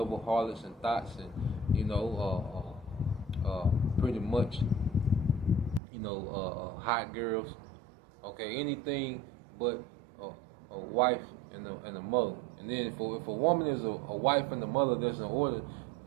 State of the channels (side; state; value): left; drops out; at 5.8 s